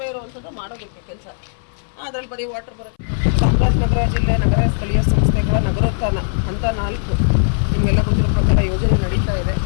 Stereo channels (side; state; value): right; silent; 67 dB below the other